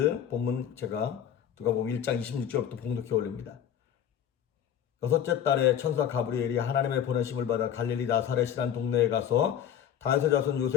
본문 제가 누가복음 1장 26절부터 봉독해 올립니다. 여섯째 달에 천사 가브리엘이 하나님의 보내심을 받아 갈릴리 나사렛이란 동네에 가서 다윗의 자손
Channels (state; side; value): quieter; right; 9.6 dB